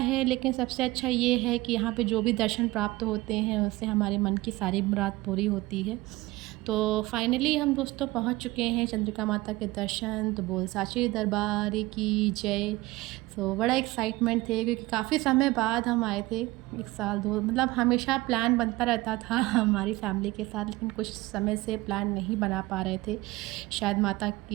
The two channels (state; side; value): quieter; left; 19.8 dB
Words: लेकिन सबसे अच्छा ये है कि यहाँ पे जो भी दर्शन प्राप्त होते हैं उससे हमारे मन की सारी मुराद पूरी होती है। तो फाइनली हम दोस्तों पहुँच चुके हैं चंद्रिका माता के दर्शन। तो बोल साचे दरबार की जय। तो बड़ा एक्साइटमेंट थे क्योंकि काफ़ी समय बाद हम आए थे। 1 साल 2 मतलब हमेशा प्लान बनता रहता था हमारी फैमिली के साथ, लेकिन कुछ समय से प्लान नहीं बना पा रहे थे। शायद माता